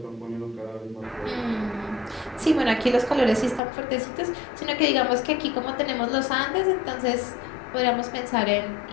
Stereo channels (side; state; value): right; drops out; at 3.6 s